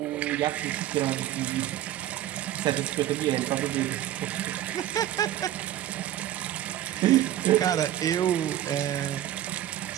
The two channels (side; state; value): left; quieter; 12.7 dB